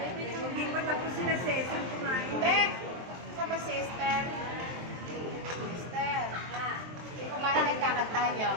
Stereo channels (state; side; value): late; left; 23 ms